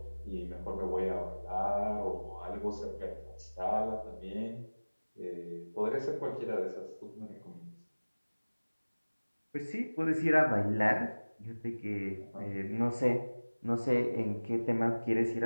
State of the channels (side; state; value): both; inverted; correlation -1.00